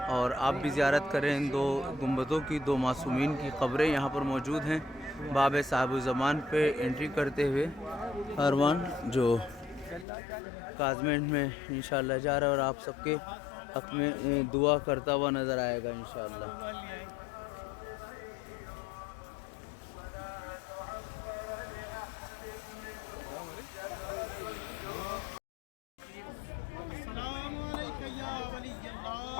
اور آپ بھی زیارت کریں۔ ان دو گنبدوں کی، دو معصومین کی قبریں یہاں پر موجود ہیں۔ باب صاحب الزمان پہ انٹری کرتے ہوئے کاروان جو کاظمین میں انشاءاللہ جا رہا ہے اور آپ سب کے حق میں دعا کرتا ہوا نظر آئے گا انشاءاللہ۔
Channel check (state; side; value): drops out; right; at 10.1 s